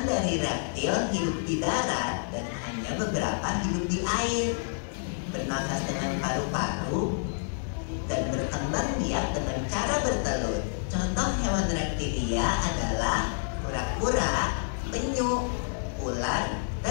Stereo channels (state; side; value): silent; right; digital silence